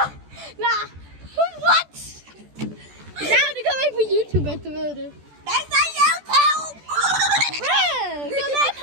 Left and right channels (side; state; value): left; late; 14 ms